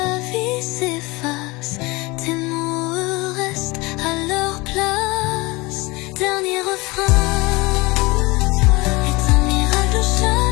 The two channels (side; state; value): right; quieter; 23.9 dB